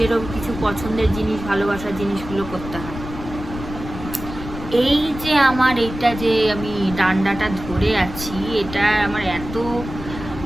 কিছু পছন্দের জিনিস, ভালোবাসার জিনিসগুলো করতে হয়। এই যে আমার এইটা যে আমি ডান্ডাটা ধরে আছি, এটা আমার এত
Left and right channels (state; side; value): noise; left; rumble, 10 dB below the sound